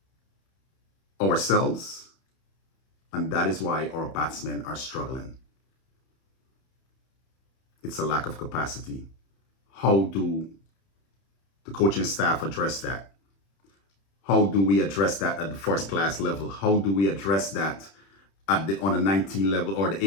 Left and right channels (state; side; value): late; right; 31 ms